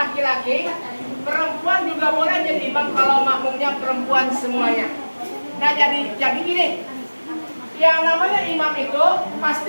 perempuan juga boleh jadi imam kalau makmumnya perempuan semuanya. Nah jadi gini, yang namanya imam itu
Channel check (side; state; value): both; inverted; correlation -1.00